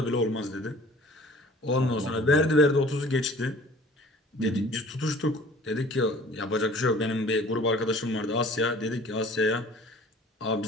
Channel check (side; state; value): both; normal; correlation 0.49